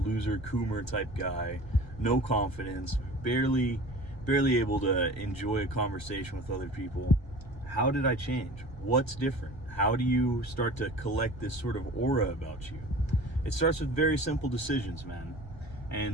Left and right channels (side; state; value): right; late; 1.3 ms